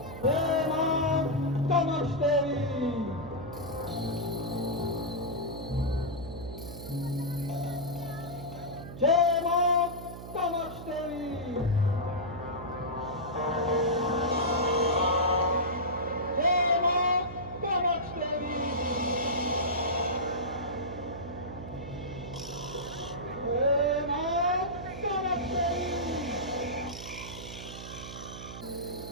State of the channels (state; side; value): noise; right; hum, 11 dB below the sound